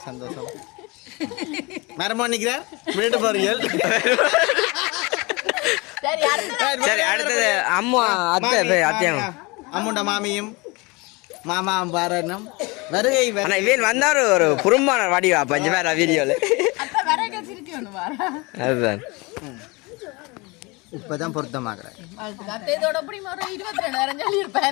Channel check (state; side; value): quieter; right; 25.9 dB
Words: சந்தோஷம் மரமா நிற்கிறார் வீட்டு பாருங்கள் சரி அடுத்தது அம்மா அத்தை அத்தையும் அம்முண்ட மாமியும் மாமா பாரணும் வருகை ஆனா இவன் வந்தாரு ஒரு குறும்பான வடிவா பஞ்ச பேர வீடியோல அதுதான் இப்பதான் பொருத்தமாக்குறேன்